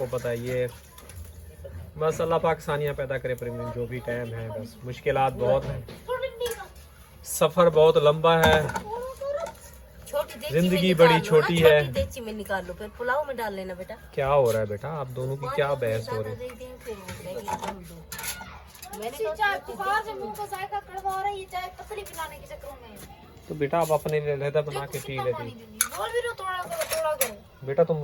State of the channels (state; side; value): identical; both; correlation 1.00